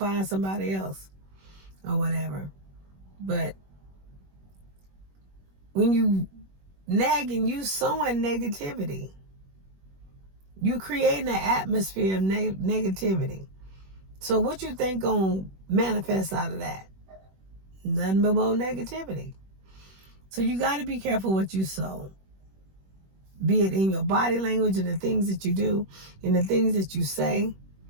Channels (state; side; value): late; left; 21 ms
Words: somebody else or whatever. But when you nagging, you sowing negativity. You creating an atmosphere of negativity. So what you think gonna manifest out of that? Nothing but more negativity. So you got to be careful what you sow. Be it in your body language and the things that you do and the things that you say.